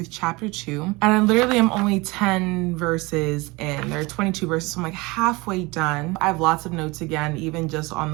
chapter 2, and I literally am only 10 verses in. There are 22 verses, so I'm like halfway done. I have lots of notes again, even just on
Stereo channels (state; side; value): quieter; left; 24.0 dB